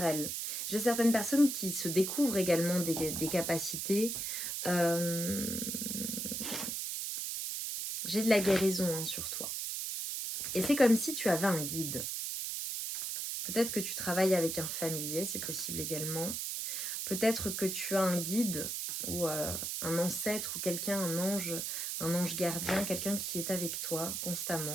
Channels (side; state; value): right; noise; hiss, 3 dB below the sound